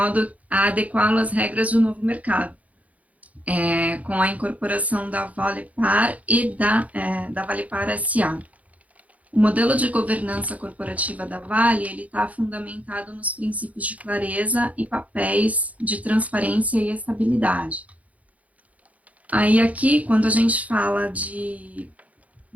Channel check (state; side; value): late; left; 0.070 ms